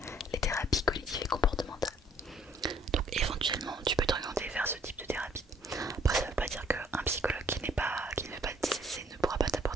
les thérapies cognitives et comportementales. Donc éventuellement tu peux t'orienter vers ce type de thérapie. Après ça veut pas dire qu'un psychologue qui ne fait pas de TCC ne pourra pas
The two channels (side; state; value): both; normal; correlation 0.61